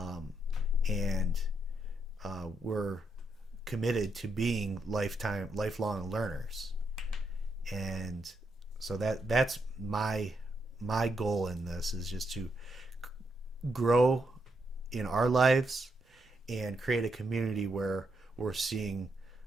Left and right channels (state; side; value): normal; both; correlation 0.80